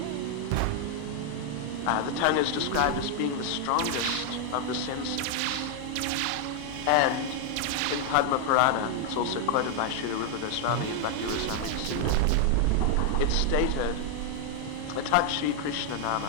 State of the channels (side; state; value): both; different; correlation 0.00